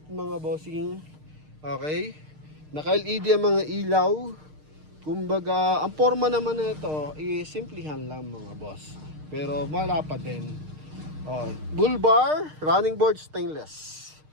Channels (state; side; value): late; left; 6.5 ms